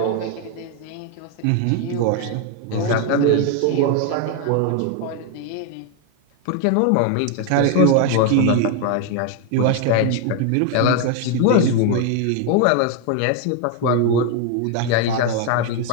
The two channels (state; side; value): different; both; correlation 0.01